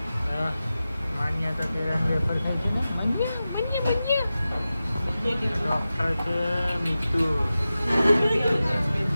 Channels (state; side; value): inverted; both; correlation -0.94